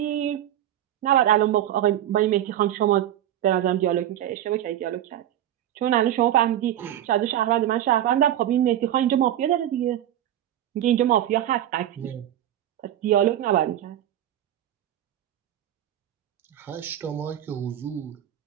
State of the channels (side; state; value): left; quieter; 11.9 dB